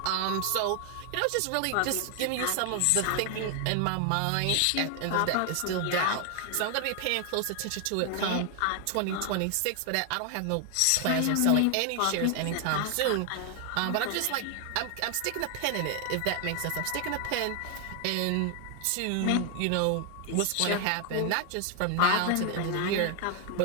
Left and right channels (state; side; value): different; both; correlation 0.00